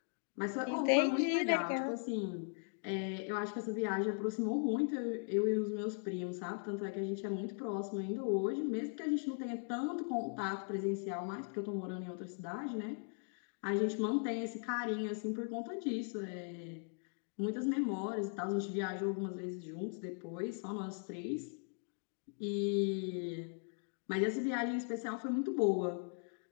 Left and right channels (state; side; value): silent; right; 52 dB below the other